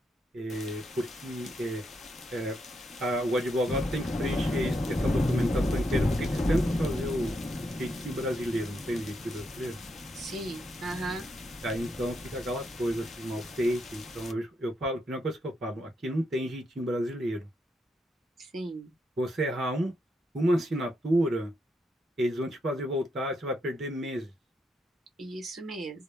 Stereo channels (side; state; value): both; normal; correlation 0.80